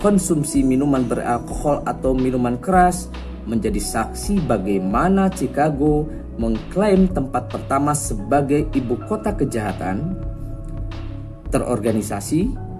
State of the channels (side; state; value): both; identical; correlation 1.00